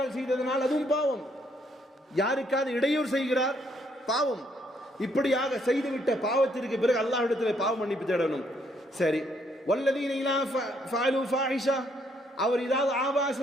செய்ததனால் அதுவும் பாவம். யாருக்காவது இடையூறு செய்கிறார், பாவம். இப்படியாக செய்துவிட்ட பாவத்திற்கு பிறகு அல்லாஹ்விடத்தில் பாவ மன்னிப்பு தேடணும். சரி, வல்லதீன இலா ஃபஅலு ஃபாஹிஷா, அவர் ஏதாவது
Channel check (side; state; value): both; normal; correlation 0.71